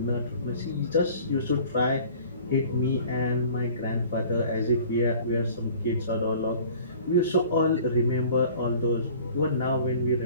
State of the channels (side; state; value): both; inverted; correlation -0.48